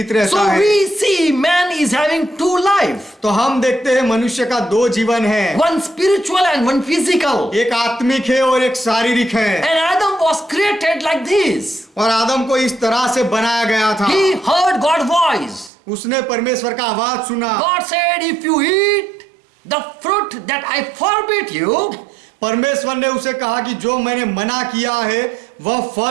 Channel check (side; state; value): left; drops out; at 15.7 s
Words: रहता So है। we see man is having 2 life, तो हम देखते हैं मनुष्य का 2 जीवन है, one spiritual and one physical. एक आत्मिक है और एक शारीरिक है। And Adam was created like this. और आदम को इस तरह से बनाया गया था। He heard God's voice. उसने परमेश्वर का आवाज सुना। God said, if you eat the fruit that I forbid you, परमेश्वर ने उसे कहा कि जो मैंने मना किया है वह